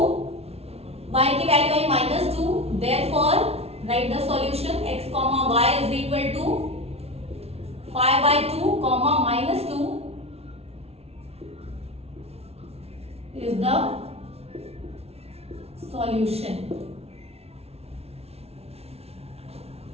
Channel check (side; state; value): left; late; 0.30 ms